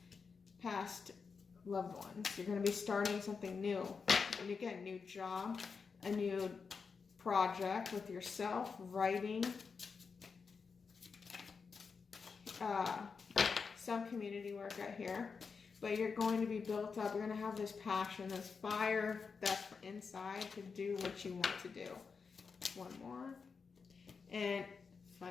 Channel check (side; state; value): right; quieter; 5.3 dB